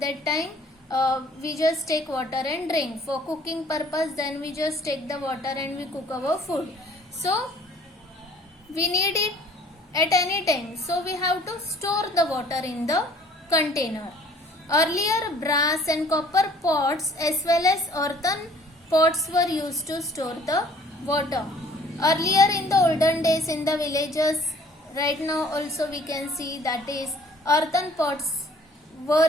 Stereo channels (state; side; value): normal; both; correlation 0.55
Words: time, we just take water and drink. For cooking purpose, then we just take the water and we cook our food. So we need it at any time, so we have to store the water in the container. Earlier brass and copper pots as well as earthen pots were used to store the water. Earlier in the olden days in the villages, right now also we can see that is earthen pots were